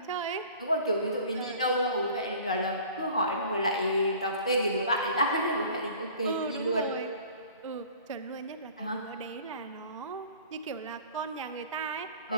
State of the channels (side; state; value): both; inverted; correlation -0.47